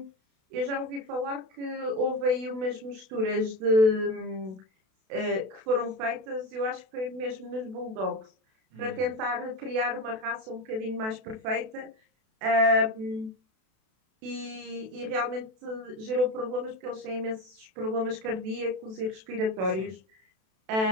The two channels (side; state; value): left; late; 32 ms